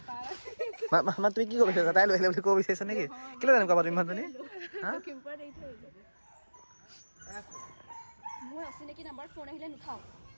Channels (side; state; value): both; inverted; correlation -1.00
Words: মা তুমি কি ক'ব বিচাৰিছা তাই লৈ আহিলে বুলি ক'ব বিচাৰিছা নেকি কেলৈ তেনেকুৱা পাতিম মানুহজনী মোৰ অচিনাকি নম্বৰ ফোন আহিলে নুঠাওঁ